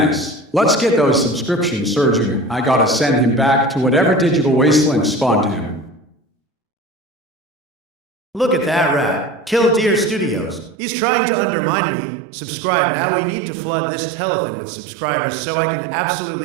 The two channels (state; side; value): drops out; left; at 10.8 s